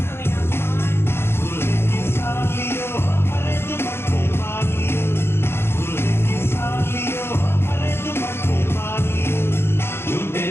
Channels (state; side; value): late; right; 0.12 ms